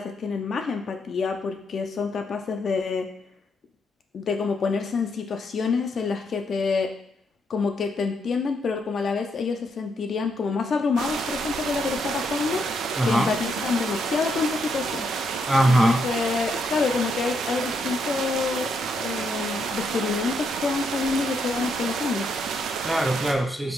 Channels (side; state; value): both; normal; correlation 0.77